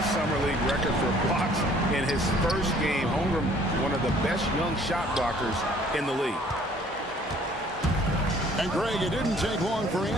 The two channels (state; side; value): normal; both; correlation 0.57